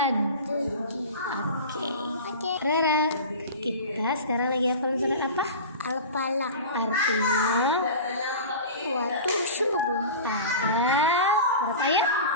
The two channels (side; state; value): both; inverted; correlation -0.33